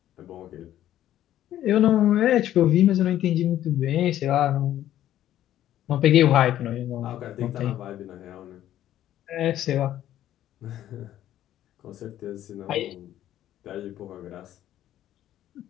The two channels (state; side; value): quieter; right; 12.3 dB